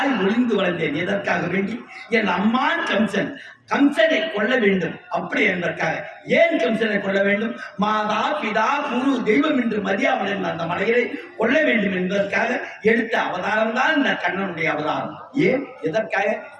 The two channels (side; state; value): both; identical; correlation 1.00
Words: ஒளிந்து வளர்ந்தேன். எதற்காக வேண்டி என் அம்மான் கம்சன் கம்சனை கொள்ள வேண்டும் அப்படி என்பதற்காக. ஏன் கம்சனை கொள்ள வேண்டும்? மாதா பிதா குரு தெய்வம் என்று மதியாவன் அந்த மலையை கொள்ள வேண்டும் என்பதற்காக எடுத்த அவதாரம் தான் இந்த கண்ணனுடைய அவதாரம். ஏன் எதற்காக?